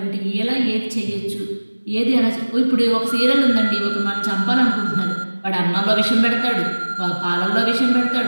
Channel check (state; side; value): inverted; both; correlation -1.00